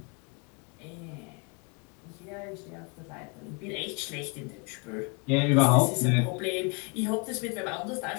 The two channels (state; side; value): quieter; right; 33.2 dB